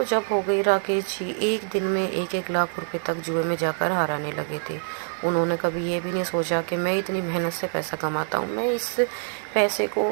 जब हो गई, राकेश जी एक दिन में 1-1 लाख रुपए तक जुए में जाकर हाराने लगे थे। उन्होंने कभी ये भी नहीं सोचा कि मैं इतनी मेहनत से पैसा कमाता हूँ, मैं इस पैसे को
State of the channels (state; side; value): silent; left; 62 dB below the other